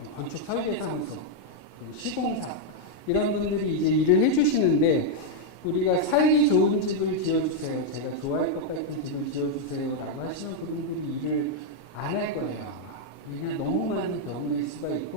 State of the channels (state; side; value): late; right; 27 ms